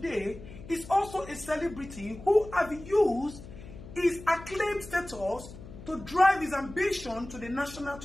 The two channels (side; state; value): left; noise; hum, 15 dB below the sound